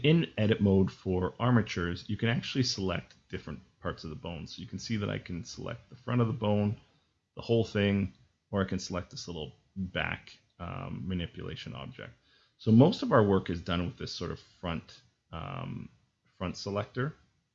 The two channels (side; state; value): both; identical; correlation 1.00